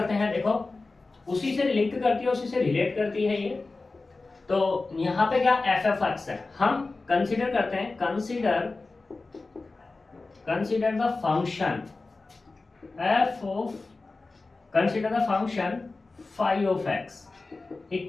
हैं। देखो, उसी से लिंक करती है, उसी से रिलेट करती है ये। तो यहाँ पे क्या एफ एफ एक्स है, हम कंसीडर करते हैं, consider the function F of, consider the function phi of X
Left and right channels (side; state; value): right; quieter; 3.6 dB